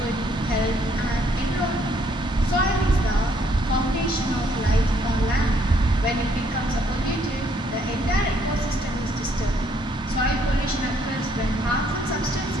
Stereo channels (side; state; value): both; normal; correlation 0.67